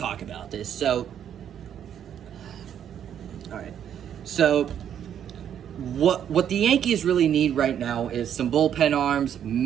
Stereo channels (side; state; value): left; quieter; 9.4 dB